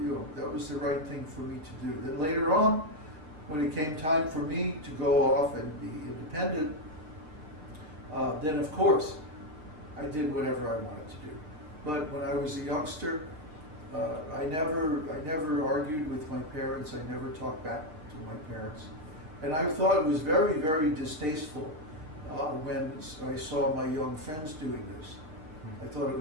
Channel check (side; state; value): left; late; 6.6 ms